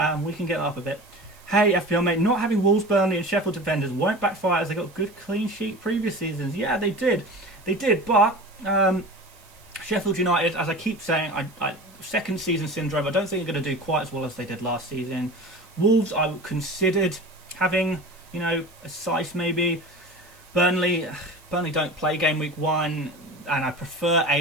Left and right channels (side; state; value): right; noise; hiss, 27 dB below the sound